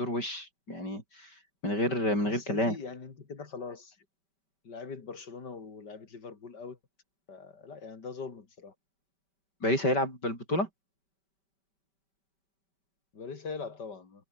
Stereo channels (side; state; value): right; late; 5.2 ms